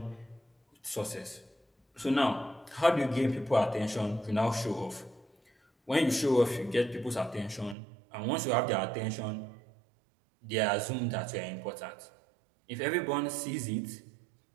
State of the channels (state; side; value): drops out; left; at 7.8 s